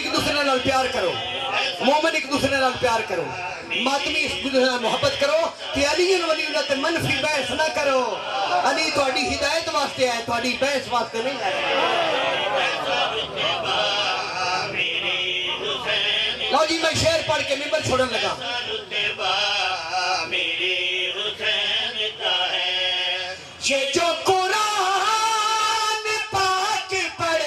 دوسرے نال پیار کرو مومن ایک دوسرے نال پیار کرو ماتمی ایک دوسرے نال محبت کرو کہ علی ولی اللہ تے منفی بحث نہ کرو علی تہاڈی ہدایت واسطے ہے تہاڈی بحث واسطے نہیں ہے لو جی میں شعر پڑھ کے ممبر چھوڑن لگا یہ جو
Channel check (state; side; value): identical; both; correlation 1.00